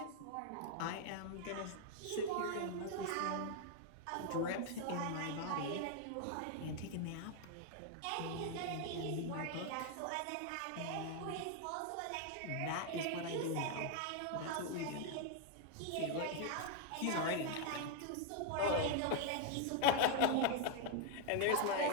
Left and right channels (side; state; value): both; different; correlation 0.00